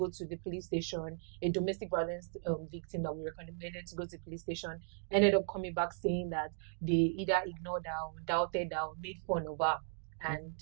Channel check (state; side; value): silent; left; digital silence